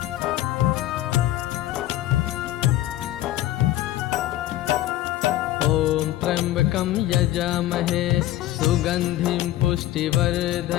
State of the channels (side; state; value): right; quieter; 14.7 dB